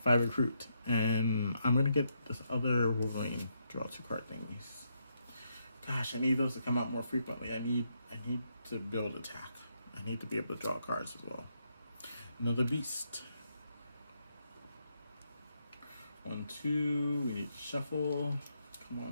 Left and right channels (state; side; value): inverted; both; correlation -0.79